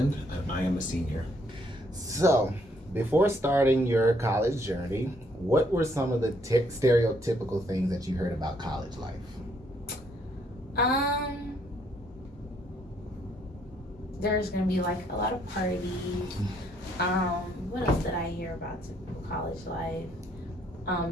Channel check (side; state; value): both; normal; correlation 0.69